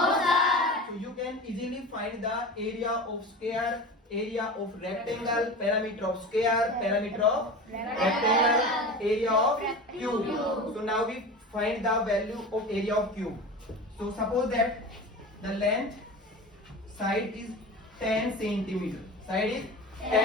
sir. So you can easily find the area of square, area of rectangle, parameter of square, parameter of rectangle, area of cube. So now we find the value of area of cube. So suppose that the length side is 10 centimeter. Side is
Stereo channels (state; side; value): normal; both; correlation 0.32